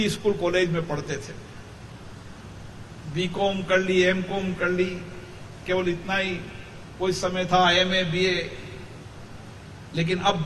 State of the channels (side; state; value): both; identical; correlation 1.00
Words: स्कूल कॉलेज में पढ़ते थे, बीकॉम कर ली, एमकॉम कर ली, केवल इतना ही कोई समय था, एमए, बीए। लेकिन अब